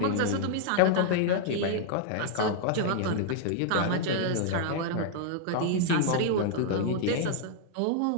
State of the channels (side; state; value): both; different; correlation -0.01